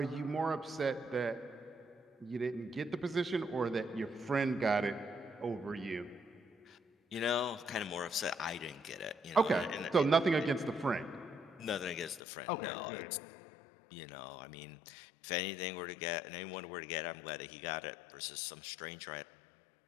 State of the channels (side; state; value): right; drops out; at 12.2 s